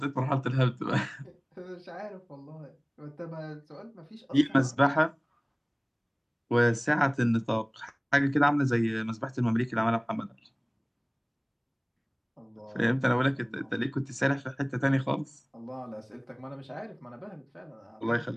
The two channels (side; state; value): both; identical; correlation 1.00